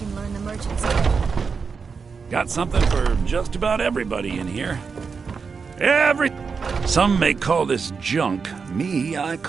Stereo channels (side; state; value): left; quieter; 5.4 dB